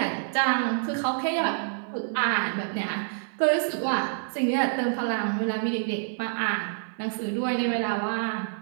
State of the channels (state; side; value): silent; left; 60 dB below the other